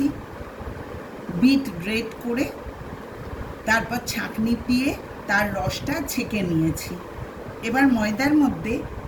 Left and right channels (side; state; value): both; identical; correlation 1.00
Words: বিট গ্রেট করে তারপর ছাঁকনি দিয়ে তার রসটা ছেঁকে নিয়েছি। এবার ময়দার মধ্যে